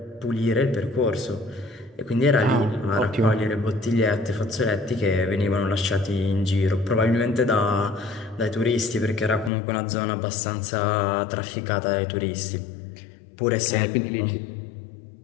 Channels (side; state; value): right; drops out; at 9.5 s